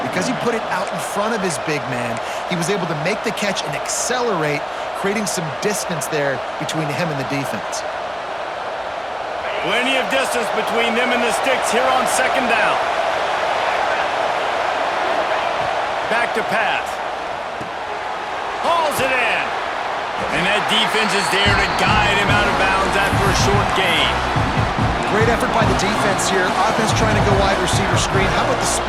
Because he put it out in front of his big man, he was able to make the catch and accelerate, creating some distance there between him and the defense. Plenty of distance between them and the sticks here on second down. Back to pass. Hauls it in. And that defense is there to guide him out of bounds after a short gain. Great effort by the defense here. Offense trying to go wide receiver screen. How about the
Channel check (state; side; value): identical; both; correlation 1.00